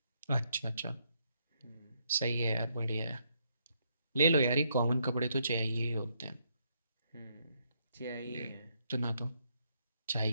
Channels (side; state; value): both; inverted; correlation -0.75